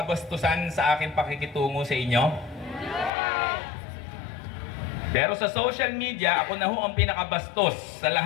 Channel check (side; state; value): right; drops out; at 3.1 s